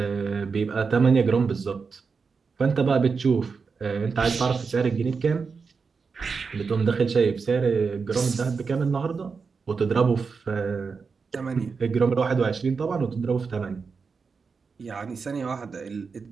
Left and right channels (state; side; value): quieter; left; 5.1 dB